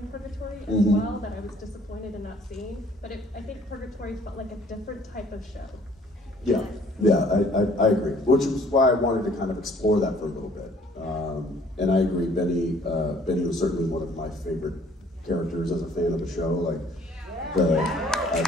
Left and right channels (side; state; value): both; normal; correlation 0.58